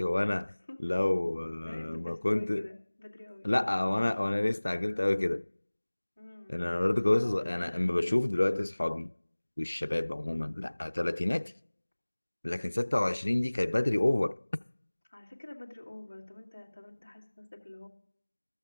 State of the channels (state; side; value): inverted; both; correlation -1.00